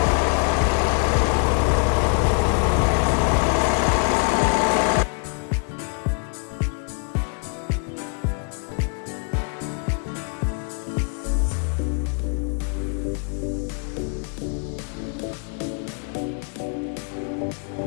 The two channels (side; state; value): right; quieter; 39.7 dB